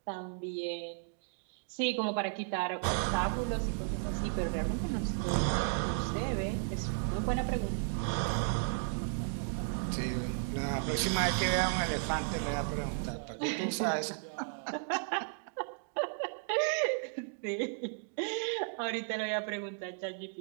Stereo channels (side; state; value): left; silent; digital silence